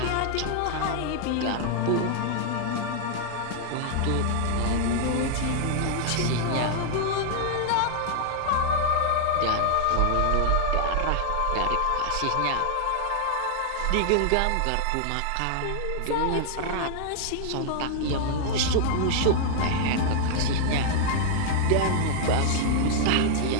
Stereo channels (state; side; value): different; both; correlation -0.01